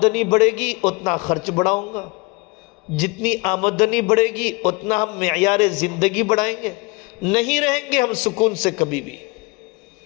بڑھے گی اتنا خرچ بڑھاؤں گا، جتنی آمدنی بڑھے گی اتنا ہم معیار زندگی بڑھائیں گے، نہیں رہیں گے ہم سکون سے کبھی بھی۔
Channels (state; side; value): quieter; right; 27.1 dB